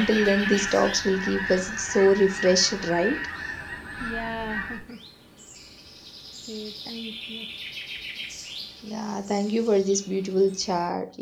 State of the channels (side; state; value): both; identical; correlation 1.00